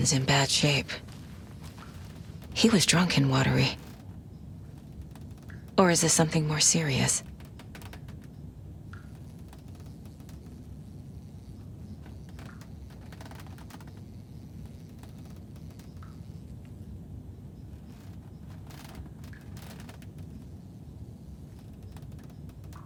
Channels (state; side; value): identical; both; correlation 1.00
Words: in bad shape. He was drunk and watery. Or is this something more serious?